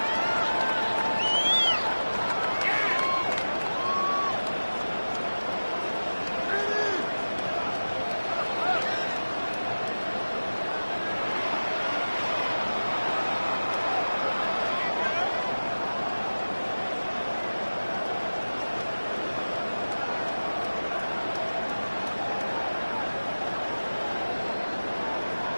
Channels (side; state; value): both; inverted; correlation -1.00